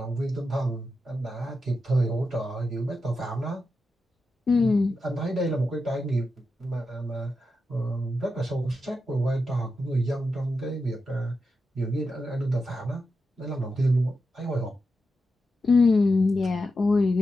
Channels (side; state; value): both; normal; correlation 0.88